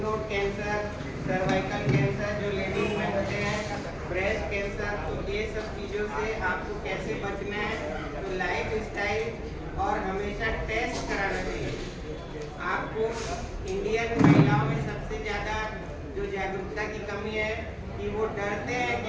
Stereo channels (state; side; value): identical; both; correlation 1.00